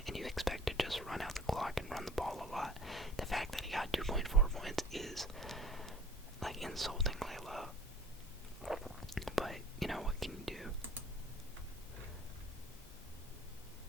and you expect to just run out the clock and run the ball a lot. The fact that he got 2.4 points is like insultingly low. But you know, what can you do?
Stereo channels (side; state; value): both; normal; correlation 0.50